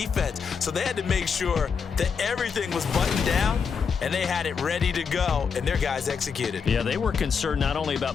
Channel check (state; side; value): quieter; right; 6.1 dB